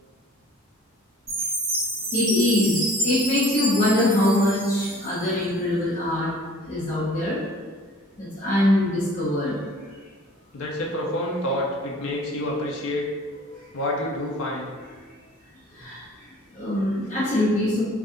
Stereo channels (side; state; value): both; normal; correlation 0.51